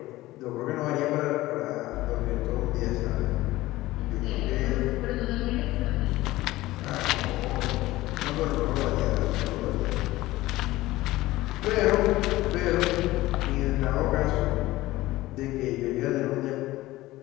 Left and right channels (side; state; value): right; quieter; 17.7 dB